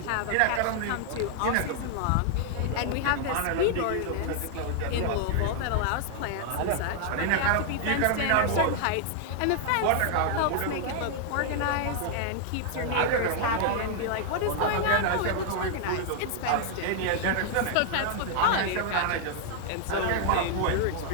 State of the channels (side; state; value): both; different; correlation 0.00